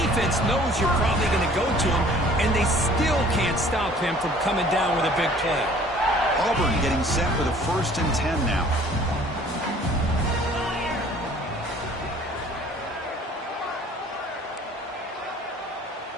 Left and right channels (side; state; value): both; normal; correlation 0.53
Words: knows you're probably going to go to him, and they still can't stop him from coming down with a big play. Auburn getting set for the 1st and 10 now.